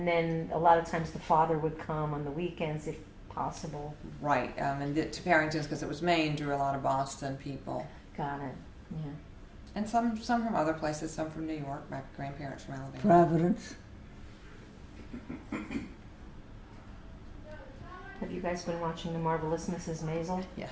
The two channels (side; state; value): both; identical; correlation 1.00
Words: then a lot of times the father would come on the weekends if possible. Right. And to Farrington's, because it was Maine, drew a lot of Boston people. Got it. Yeah. And some from other places, some from New York. My grandparents from Alabama. Providence. Have you guys been watching The Marvelous Mrs. Maisel? Yes.